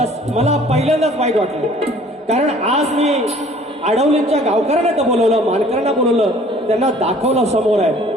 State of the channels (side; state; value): both; normal; correlation 0.53